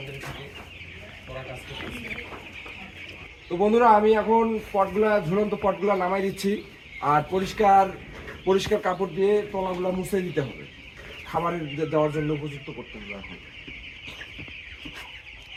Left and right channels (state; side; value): identical; both; correlation 1.00